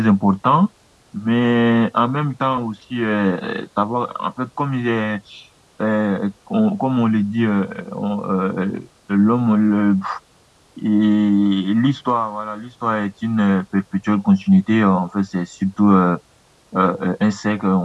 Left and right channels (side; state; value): both; identical; correlation 1.00